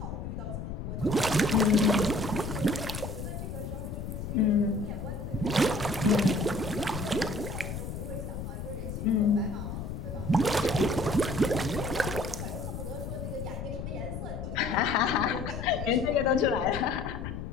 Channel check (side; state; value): left; noise; rumble, 6 dB below the sound